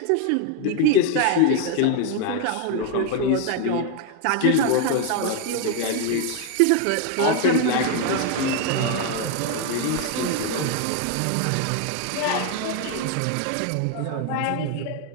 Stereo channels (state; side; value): different; both; correlation 0.01